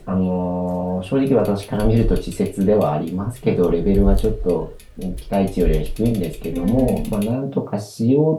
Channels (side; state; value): both; identical; correlation 1.00